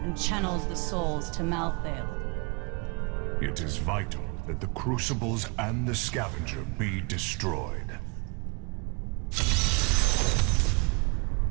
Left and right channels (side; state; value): left; quieter; 32.0 dB